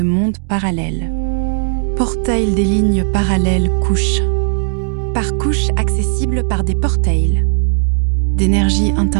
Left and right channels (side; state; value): left; silent; digital silence